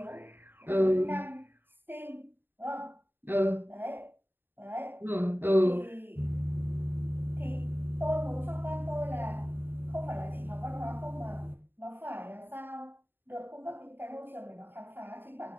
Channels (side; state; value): left; late; 0.097 ms